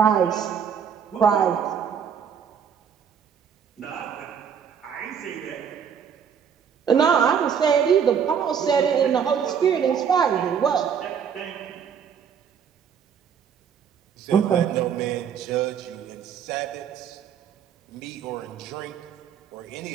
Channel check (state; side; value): quieter; left; 7.6 dB